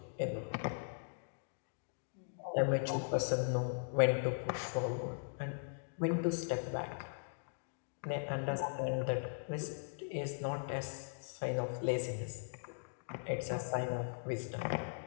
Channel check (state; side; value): silent; right; digital silence